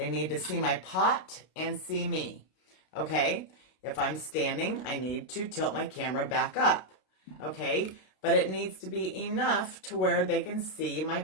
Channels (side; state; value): right; late; 32 ms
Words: need to see my pot and see me, okay? If I'm standing, I need to tilt my camera back up, okay? But it needs to be enough to where they can see my